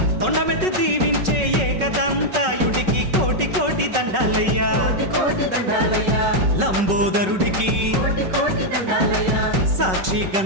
తొండమెత్తి దీవించే ఏకదంతాయుడికి కోటి కోటి దండాలయ్యా లంబోదరుడికి సాక్షి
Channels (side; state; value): left; late; 5.3 ms